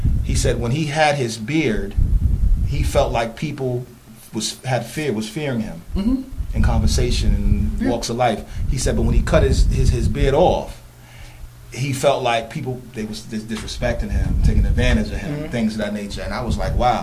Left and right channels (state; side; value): identical; both; correlation 1.00